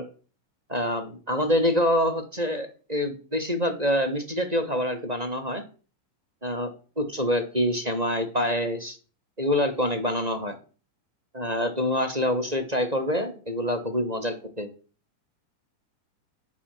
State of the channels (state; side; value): late; left; 1.9 ms